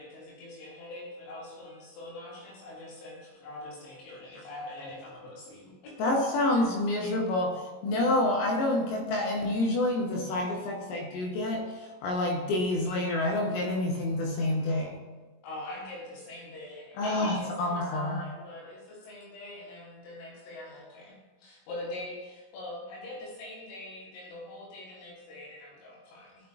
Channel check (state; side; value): late; right; 22 ms